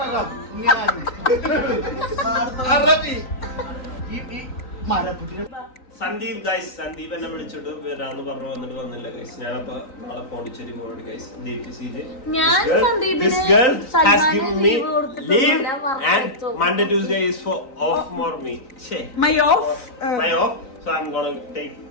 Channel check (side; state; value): right; late; 3.9 ms